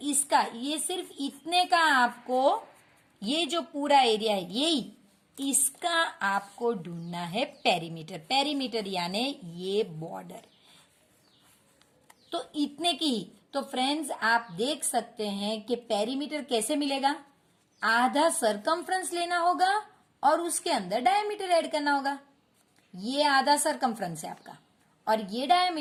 इसका ये सिर्फ इतने का आपको ये जो पूरा एरिया है यही इसका आपको ढूंढना है पेरीमीटर। पेरीमीटर यानी ये बॉर्डर तो इतने की। तो फ्रेंड्स आप देख सकते हैं कि पेरीमीटर कैसे मिलेगा, आधा सरकमफ्रेंस लेना होगा और उसके अंदर डायमीटर ऐड करना होगा। ये आधा सरकमफ्रेंस है आपका और ये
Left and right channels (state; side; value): identical; both; correlation 1.00